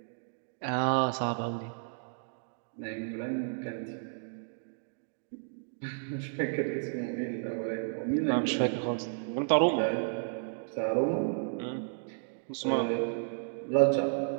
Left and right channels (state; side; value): silent; left; digital silence